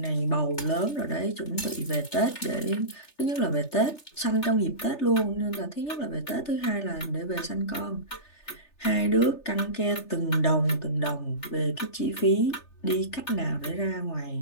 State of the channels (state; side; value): late; right; 3.3 ms